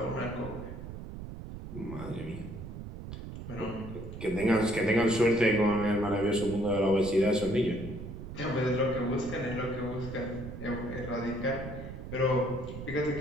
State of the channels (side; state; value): right; noise; rumble, 10 dB below the sound